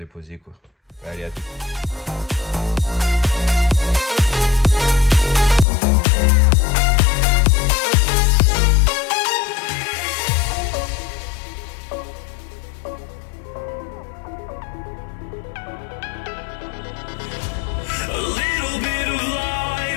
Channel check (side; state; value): right; drops out; at 5.7 s